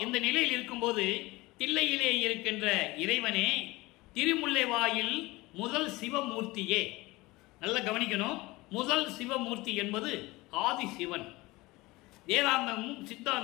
இந்த நிலையில் இருக்கும்போது தில்லையிலே இருக்கின்ற இறைவனே, திருமுல்லை வாயில் முதல் சிவமூர்த்தியே. நல்லா கவனிக்கணும். முதல் சிவமூர்த்தி என்பது ஆதி சிவன். வேதாந்தமும்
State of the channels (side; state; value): right; quieter; 21.2 dB